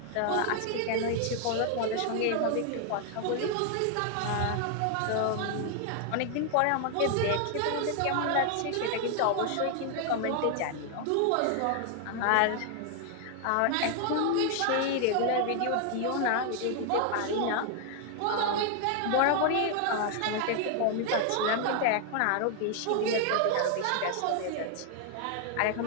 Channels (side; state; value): both; different; correlation 0.00